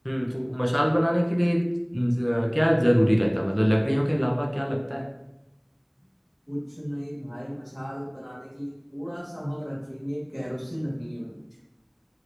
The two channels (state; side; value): identical; both; correlation 1.00